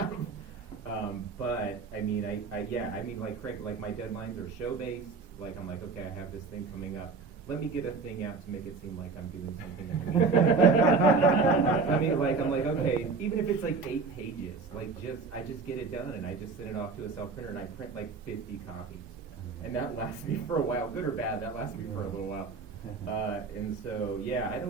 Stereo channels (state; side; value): quieter; left; 4.4 dB